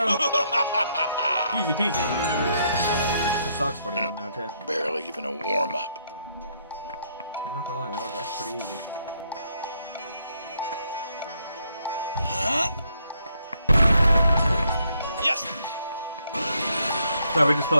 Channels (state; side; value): inverted; both; correlation -0.73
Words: Easy peasy. This sucks 41 now too. Barely even a warm-up. I'm not gonna lie, that was actually pretty easy. Yes! So we're just